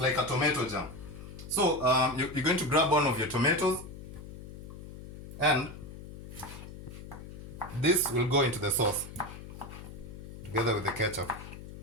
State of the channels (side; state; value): left; noise; hum, 13 dB below the sound